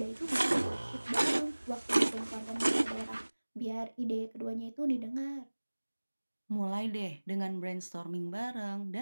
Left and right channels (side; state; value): both; inverted; correlation -1.00